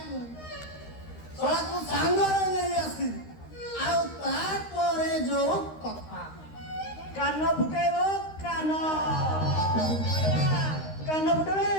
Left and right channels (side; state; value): right; late; 13 ms